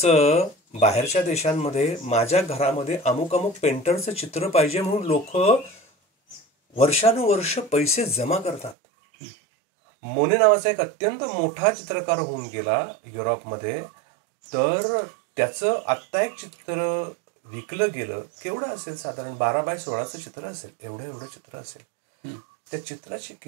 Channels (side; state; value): left; drops out; at 8.8 s